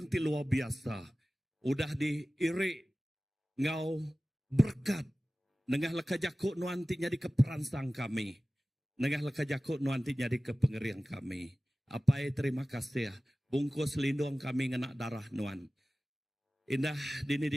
ti luar biasa. Udah diirik ngau berkat. Nengah leka jakuk nuanti jadi keperansang kami. Nengah leka jakuk nuanti jadi kepengeriang kami. Apa terima kasih. Bungkus lindung kami ngenak darah nuan. Indah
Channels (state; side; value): normal; both; correlation 0.97